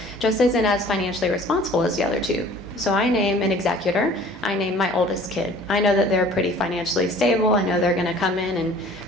just isn't as financially responsible as the other 2. So I name an executor. I name my oldest kid. I know that they're pretty financially stable. I know they're going to come in and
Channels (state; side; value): normal; both; correlation 0.49